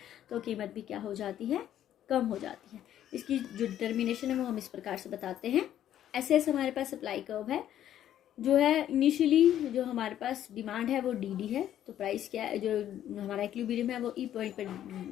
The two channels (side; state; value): right; quieter; 11.3 dB